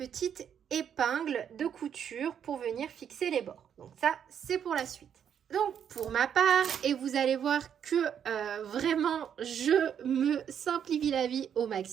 épingles de couture pour venir fixer les bords. Donc ça, c'est pour la suite. Donc pour ma part, et vous allez voir que vraiment je me simplifie la vie au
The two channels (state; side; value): quieter; left; 8.5 dB